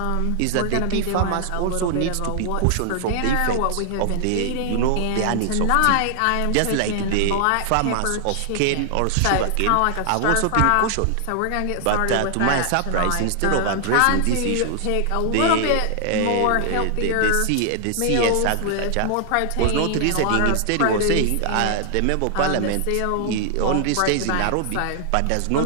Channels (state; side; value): different; both; correlation 0.00